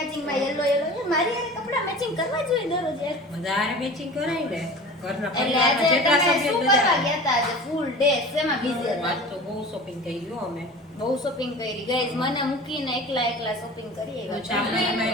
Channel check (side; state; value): both; normal; correlation 0.38